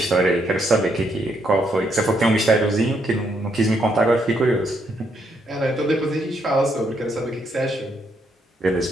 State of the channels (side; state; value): both; normal; correlation 0.75